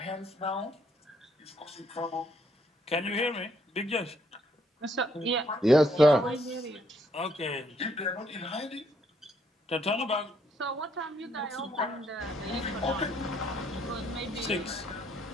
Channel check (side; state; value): both; normal; correlation 0.70